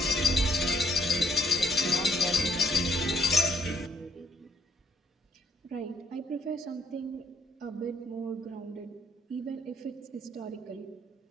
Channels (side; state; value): both; normal; correlation 0.66